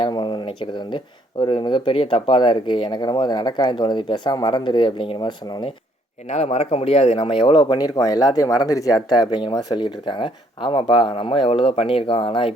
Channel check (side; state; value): both; normal; correlation 0.66